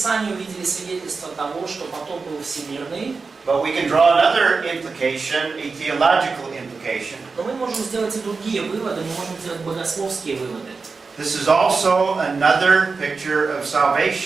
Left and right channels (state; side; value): quieter; left; 4.5 dB